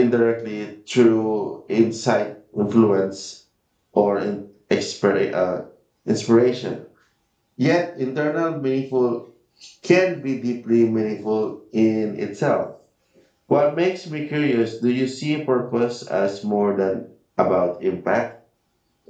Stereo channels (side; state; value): both; identical; correlation 1.00